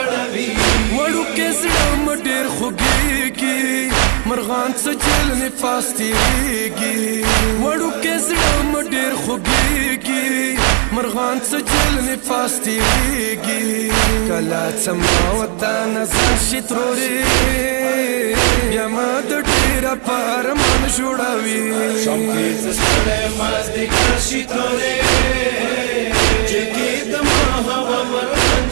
وړو کې زړه مې ډېر خوږېږي مرغان څه جیل نفاس تیریږي وړو کې زړه مې ډېر خوږېږي مرغان څه جیل نفاس تیریږي کله څه ما وطن ځان شي ترورې بیا ما د ډېره په ارمان جوړوي شام کې څستړې مازدیګر شي ترورې جلکی دما هوا مرغان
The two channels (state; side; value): quieter; left; 36.9 dB